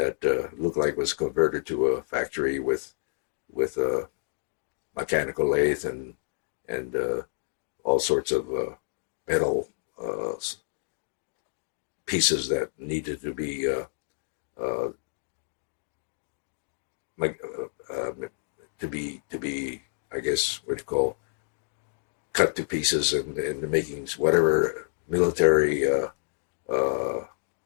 looked like was converted to a factory with a mechanical lathe and all sorts of metal pieces that needed to be to be, I guess, what you call, cut to pieces and making whatever military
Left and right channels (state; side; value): silent; right; digital silence